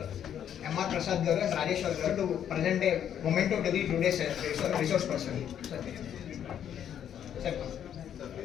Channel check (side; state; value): right; quieter; 9.5 dB